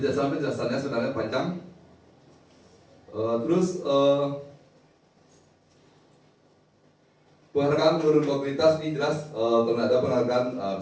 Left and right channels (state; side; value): identical; both; correlation 1.00